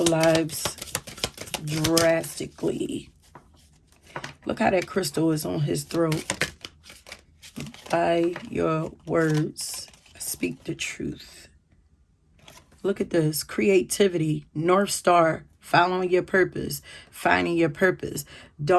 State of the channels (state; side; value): identical; both; correlation 1.00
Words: lives drastically. Look how that crystal is on his throat. By your words, speak the truth. Look at this. Creativity, North Star, following your purpose, finding your purpose.